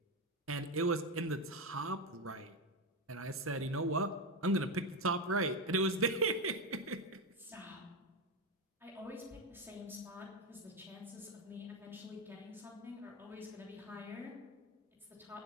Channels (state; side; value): normal; both; correlation 0.11